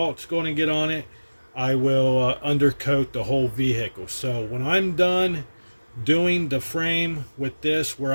going to get on it, I will undercoat the whole vehicle. So when I'm done doing the frame with this, where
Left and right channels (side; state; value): both; inverted; correlation -1.00